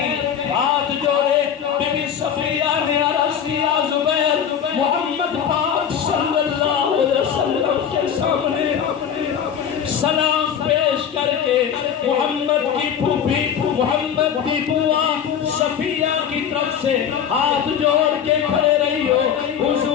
ہاتھ جوڑے بی بی صفیہ نے عرض کیا زبیر محمد پاک صلی اللہ علیہ وسلم کے سامنے سلام پیش کر کے محمد کی پھوپھی محمد کی بوا صفیہ کی طرف سے ہاتھ جوڑ کے کھڑے رہی ہو،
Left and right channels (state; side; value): quieter; right; 8.3 dB